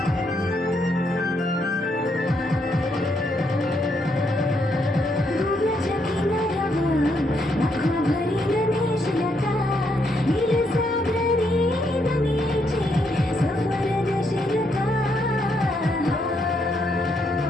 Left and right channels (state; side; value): normal; both; correlation 0.76